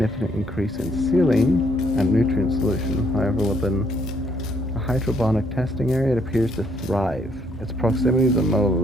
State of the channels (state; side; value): normal; both; correlation 0.70